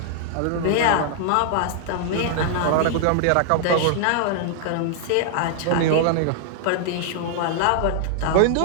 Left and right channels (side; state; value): both; different; correlation -0.01